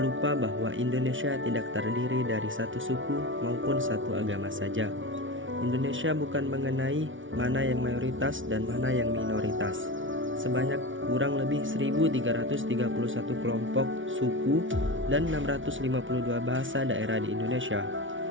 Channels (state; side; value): late; left; 0.56 ms